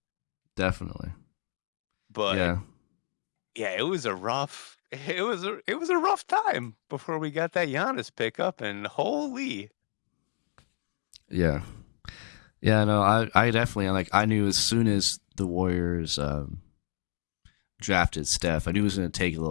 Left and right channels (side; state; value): right; silent; 58 dB below the other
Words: Definitely. But yeah, it was a rough time before we got that Giannis pickup, and holy. Yeah. Yeah, no, I definitely I knew as soon as the Warriors drafted Steph, I knew it was going to take a